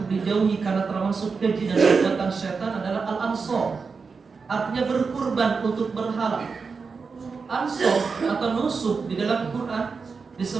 dijauhi karena termasuk keji dan perbuatan setan adalah al-ansor. Artinya berkurban untuk berhala. Ansor atau nusuk di dalam Quran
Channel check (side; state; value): left; quieter; 5.0 dB